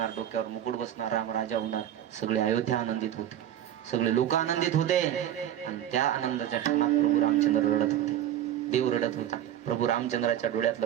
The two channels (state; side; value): quieter; left; 11.1 dB